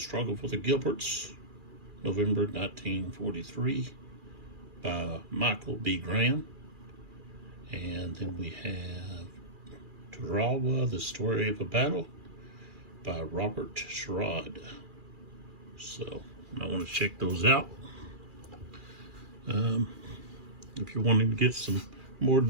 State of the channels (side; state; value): left; late; 2.4 ms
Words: for the Gilberts, November 1943, by Michael B. Graham. And then we have Tarawa, The Story of a Battle, by Robert Sherrod. So I want to check those out. If you're wanting to get some more